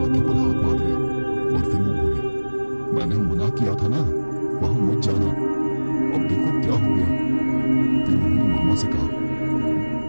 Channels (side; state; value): both; inverted; correlation -1.00